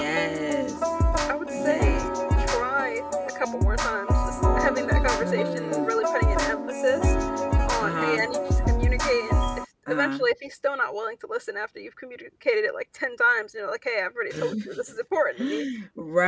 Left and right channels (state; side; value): identical; both; correlation 1.00